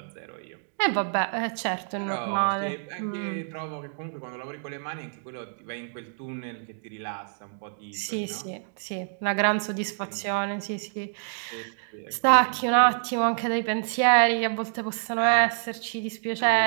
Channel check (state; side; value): silent; left; digital silence